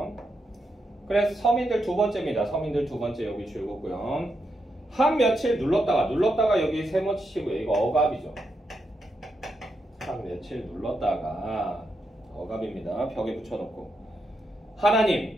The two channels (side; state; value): both; normal; correlation 0.83